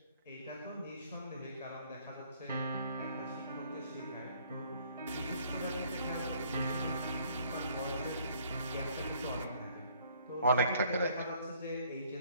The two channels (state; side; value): inverted; both; correlation -0.62